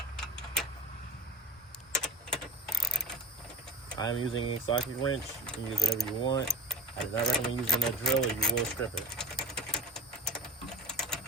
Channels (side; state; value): both; normal; correlation 0.37